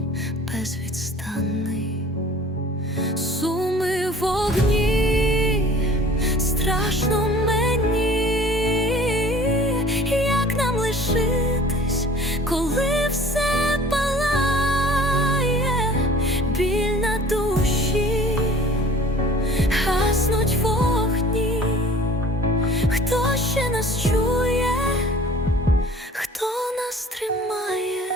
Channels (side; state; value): both; normal; correlation 0.48